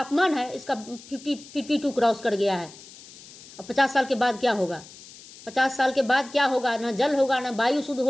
है इसका 52 क्रॉस कर गया है। अब 50 साल के बाद क्या होगा? 50 साल के बाद क्या होगा? ना जल होगा, ना वायु शुद्ध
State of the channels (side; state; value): left; noise; hiss, 19 dB below the sound